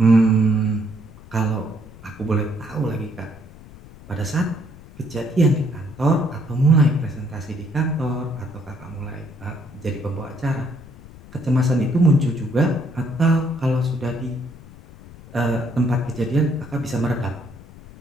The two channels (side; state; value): left; noise; rumble, 19 dB below the sound